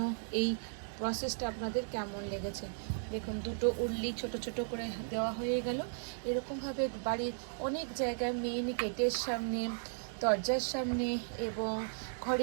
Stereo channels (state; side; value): silent; left; digital silence